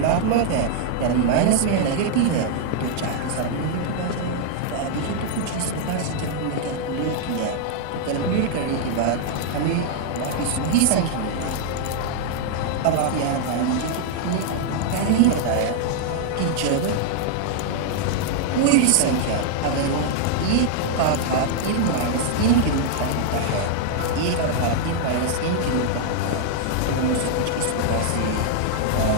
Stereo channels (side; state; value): both; different; correlation 0.00